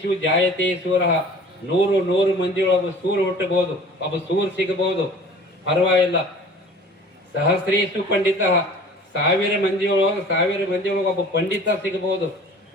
ಜಾಯತೆ ಸೂರ, 100 ಮಂದಿಯೊಳಗ ಸೂರು ಹುಟ್ಟಬಹುದು, ಒಬ್ಬ ಸೂರು ಸಿಗಬಹುದು, ಪರವಾಗಿಲ್ಲ. ಸಹಸ್ರೇಶು ಪಂಡಿತ, 1000 ಮಂದಿಯೊಳಗ ಒಬ್ಬ ಪಂಡಿತ ಸಿಗಬಹುದು.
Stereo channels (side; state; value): both; normal; correlation 0.46